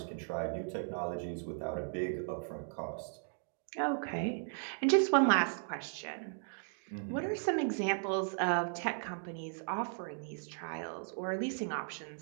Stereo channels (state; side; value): silent; left; 53 dB below the other